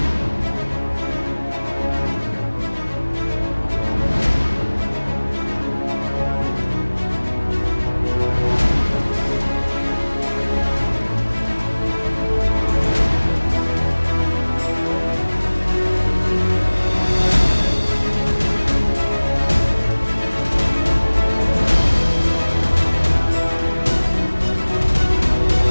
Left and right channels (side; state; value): both; inverted; correlation -1.00